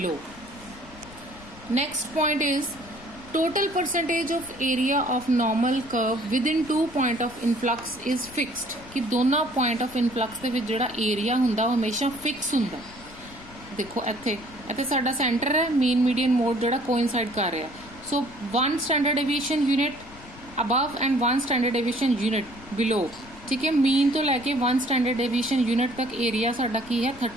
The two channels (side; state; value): left; noise; rumble, 20 dB below the sound